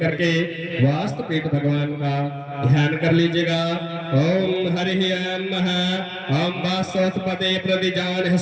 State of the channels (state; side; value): identical; both; correlation 1.00